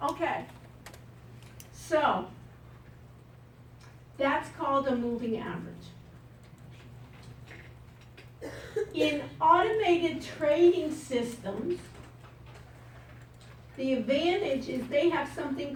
Okay. So, that's called a moving average. In automated trading systems, the advantage is they have something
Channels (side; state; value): both; identical; correlation 1.00